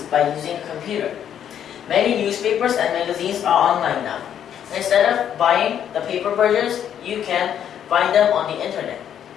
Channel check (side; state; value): right; quieter; 9.5 dB